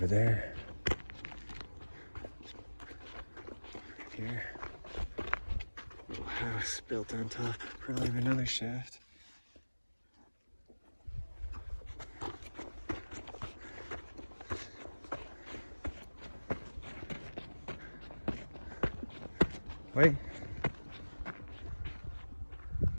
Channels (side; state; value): both; inverted; correlation -1.00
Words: there. Right here. Little house built on top, probably of another shaft. Wait.